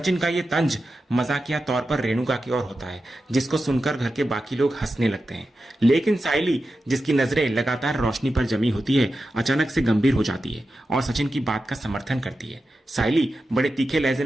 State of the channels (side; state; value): both; normal; correlation 0.91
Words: का ये तंज मजाकिया तौर पर रेणुका की ओर होता है, जिसको सुनकर घर के बाकी लोग हंसने लगते हैं। लेकिन साइली, जिसकी नजरें लगातार रोशनी पर जमी होती है, अचानक से गंभीर हो जाती है और सचिन की बात का समर्थन करती है। साइली बड़े तीखे लहजे